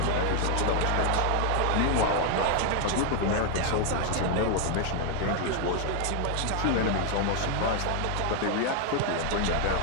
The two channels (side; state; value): both; different; correlation 0.01